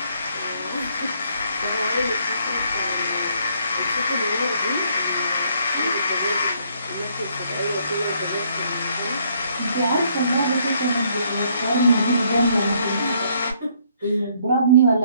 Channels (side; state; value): both; inverted; correlation -0.67